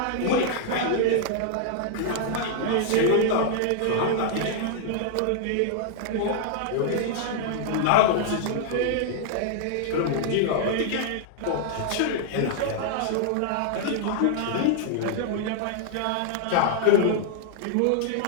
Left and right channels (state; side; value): different; both; correlation -0.01